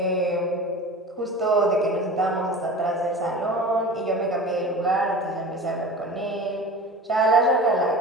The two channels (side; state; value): both; normal; correlation 0.36